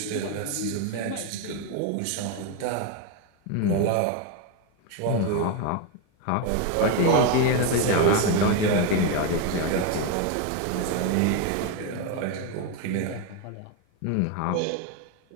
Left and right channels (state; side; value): different; both; correlation 0.02